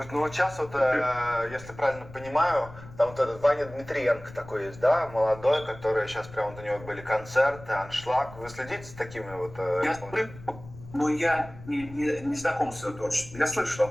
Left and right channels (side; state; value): left; noise; rumble, 17 dB below the sound